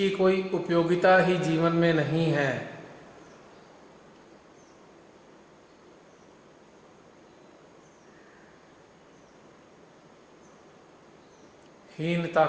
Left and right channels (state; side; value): identical; both; correlation 1.00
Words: कोई उपयोगिता ही जीवन में नहीं है, हीनता